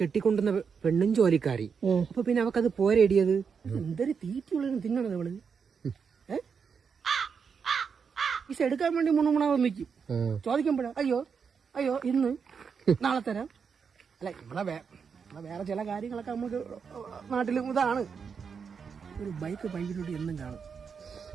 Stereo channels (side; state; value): left; quieter; 6.2 dB